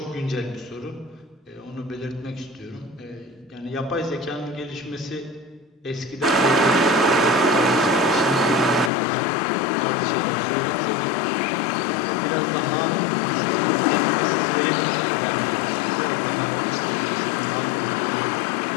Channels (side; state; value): right; drops out; at 8.9 s